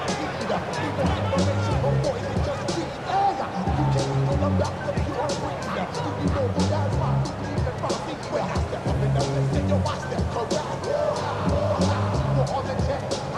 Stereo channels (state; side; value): identical; both; correlation 1.00